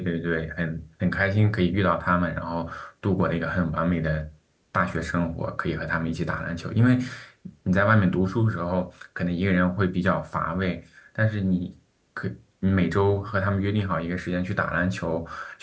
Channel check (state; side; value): identical; both; correlation 1.00